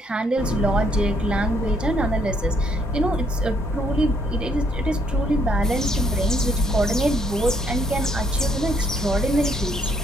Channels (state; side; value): normal; both; correlation 0.69